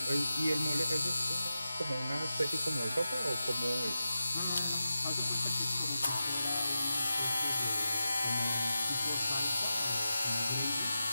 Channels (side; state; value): both; inverted; correlation -0.91